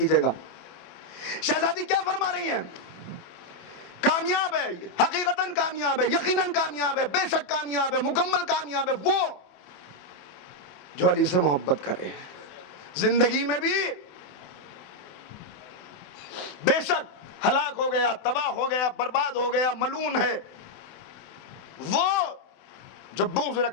گا. شہزادی کیا فرما رہی ہیں کامیاب ہے، حقیقتاً کامیاب ہے، یقیناً کامیاب ہے، بے شک کامیاب ہے، مکمل کامیاب ہے وہ جو علی سے محبت کرے، زندگی میں بھی بے شک ہلاک ہو گیا، تباہ ہو گیا، برباد ہو گیا، ملعون ہے، وہ جو بغض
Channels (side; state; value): right; late; 28 ms